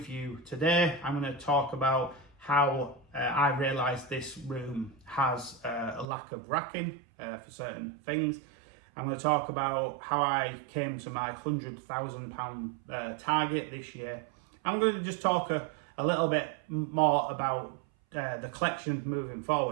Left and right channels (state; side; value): drops out; left; at 6.1 s